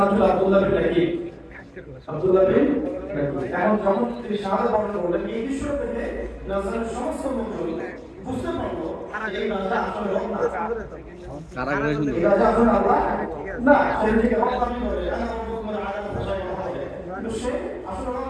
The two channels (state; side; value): identical; both; correlation 1.00